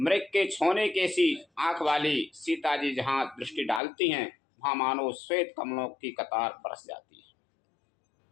के छोने के सी आंख वाली सीता जी जहाँ दृष्टि डालती हैं वहाँ मानो श्वेत कमलों की कतार बरस जाती है।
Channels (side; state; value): right; drops out; at 3.8 s